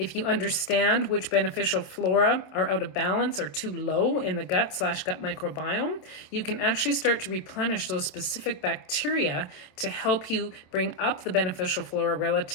you understand which beneficial flora are out of balance or too low in the gut/gut microbiome, you can actually start to replenish those specific bacteria to help you bring up the beneficial flora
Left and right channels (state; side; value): late; right; 27 ms